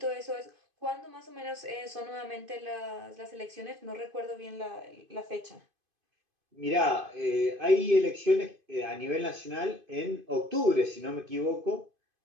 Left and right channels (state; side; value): late; left; 2.5 ms